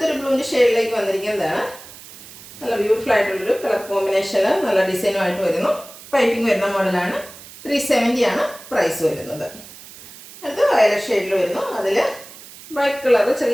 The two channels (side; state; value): right; noise; hiss, 18 dB below the sound